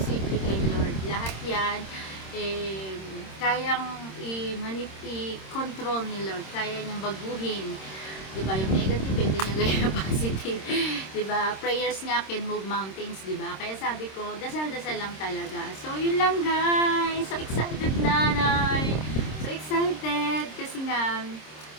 kay Lord. Lahat yan, kayang i-control ni Lord. Kaya niyang baguhin. Diba? Yung negative, pwede niya gawin yung positive. Diba? Prayers nga can move mountains, diba? Kaya sabi ko, dasal-dasal lang talaga. So, yun lang guys. So, excited nanay. So, excited. Kasi nga,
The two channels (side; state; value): right; late; 26 ms